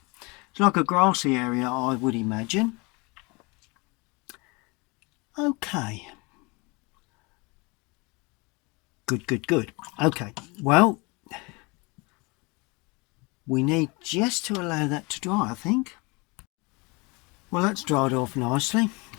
It's like a grassy area, I would imagine. Okay, good. Okay, well, we need just to allow that to dry, I think. Well, that's dried off nicely.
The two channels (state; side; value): quieter; right; 27.6 dB